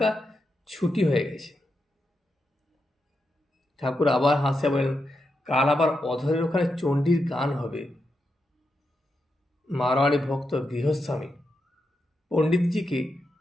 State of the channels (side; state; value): both; normal; correlation 0.86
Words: ছুটি হয়ে গেছে। ঠাকুর আবার হাসিয়া বললেন, কাল আবার অধরের ওখানে চণ্ডীর গান হবে। মারোয়ারি ভক্ত গৃহস্বামী পণ্ডিতজিকে